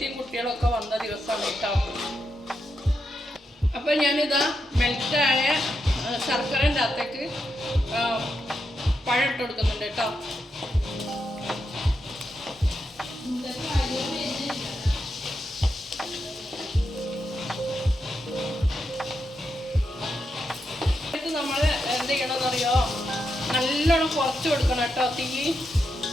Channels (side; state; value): both; normal; correlation 0.84